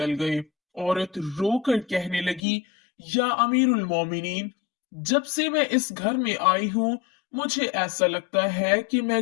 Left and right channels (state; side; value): drops out; right; at 2.4 s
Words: गए। औरत रोकर कहने लगी, या अमीरुल मोमिनीन, जब से मैं इस घर में आई हूँ मुझे ऐसा लगता है कि